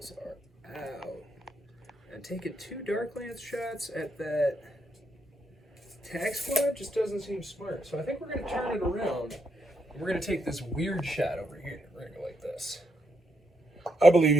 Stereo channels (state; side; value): normal; both; correlation 0.80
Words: are out. And taking 2 dark lance shots at that tax squad just doesn't seem smart. So I think we're going to turn it around. And we're going to take this weird shot over here. We're going to go like this. I believe